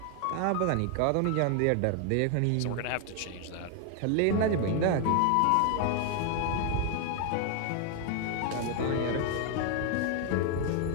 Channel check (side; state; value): both; different; correlation 0.00